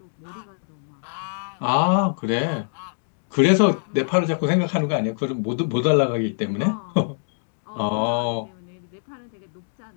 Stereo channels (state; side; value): silent; right; digital silence